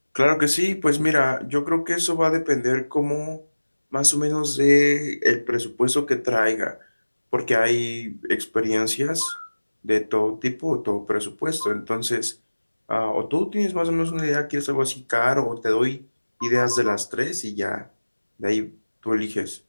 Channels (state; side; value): inverted; both; correlation -1.00